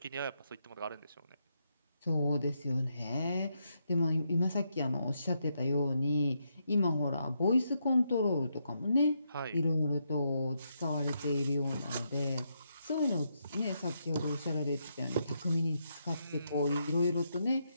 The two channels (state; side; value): inverted; both; correlation -0.80